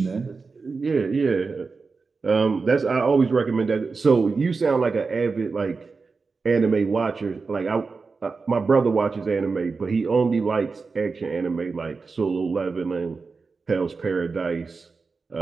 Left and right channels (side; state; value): left; quieter; 4.5 dB